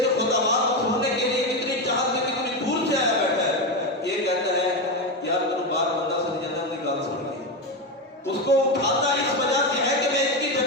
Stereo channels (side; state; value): both; normal; correlation 0.13